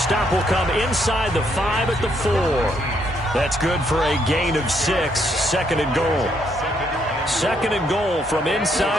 will come inside the 5 at the 4. That's good for a gain of 6. 2nd and goal. 2nd and goal from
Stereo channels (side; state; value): both; normal; correlation 0.73